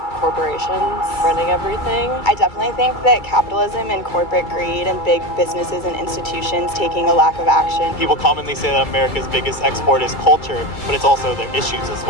corporations running everything. I definitely think that capitalism and corporate greed and big businesses and institutions taking a lack of action. People commonly say that America's biggest export is culture, but it's also their issues as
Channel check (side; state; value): right; late; 2.3 ms